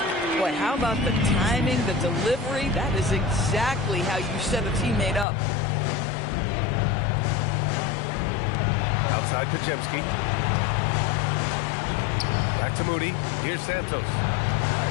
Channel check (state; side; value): drops out; right; at 5.2 s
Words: Boy, how about the timing, the delivery? That is exactly how you set a teammate up. Outside Pajemski. Back to Moody. Here's Santos.